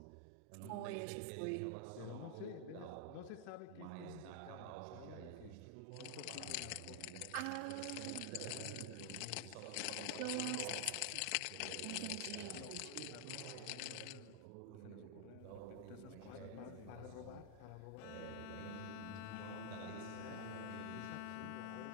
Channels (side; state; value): both; different; correlation 0.00